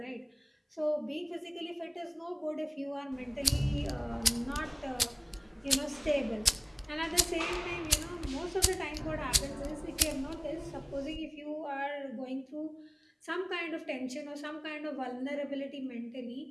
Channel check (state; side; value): identical; both; correlation 1.00